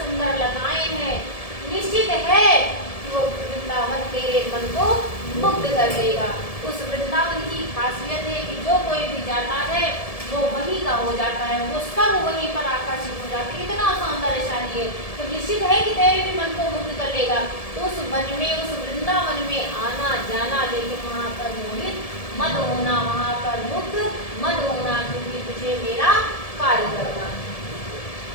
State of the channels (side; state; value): right; late; 1.7 ms